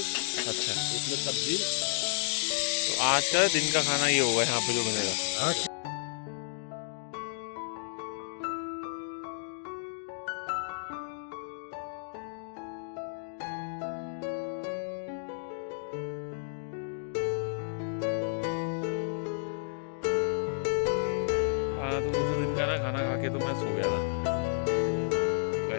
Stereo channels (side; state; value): right; silent; digital silence